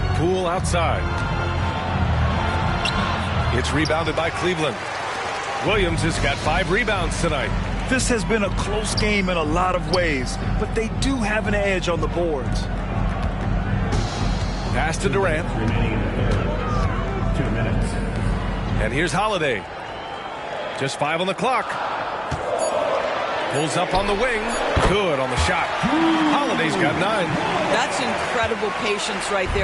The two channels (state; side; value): identical; both; correlation 1.00